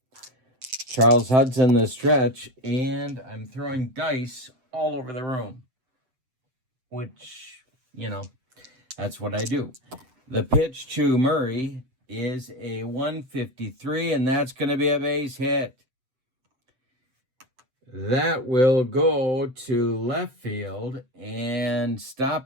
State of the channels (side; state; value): left; late; 7.8 ms